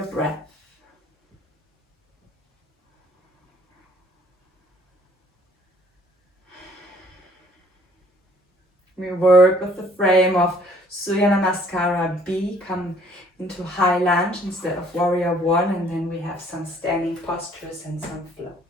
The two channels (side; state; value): both; normal; correlation 0.59